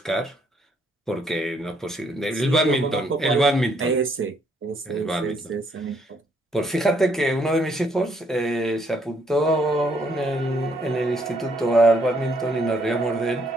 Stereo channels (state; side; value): normal; both; correlation 0.70